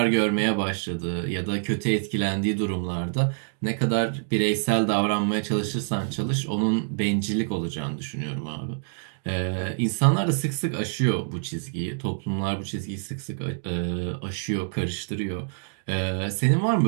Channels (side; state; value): left; silent; digital silence